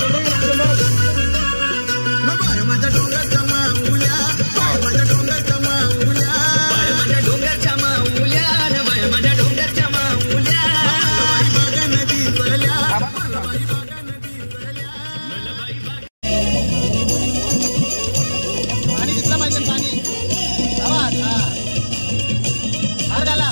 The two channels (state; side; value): inverted; both; correlation -1.00